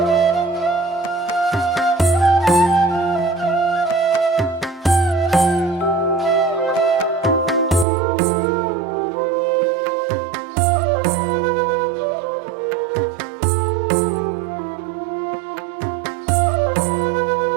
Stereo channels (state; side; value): drops out; left; at 7.9 s